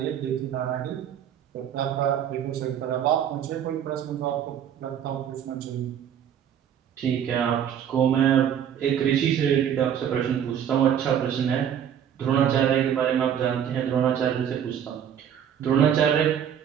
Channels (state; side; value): quieter; left; 9.2 dB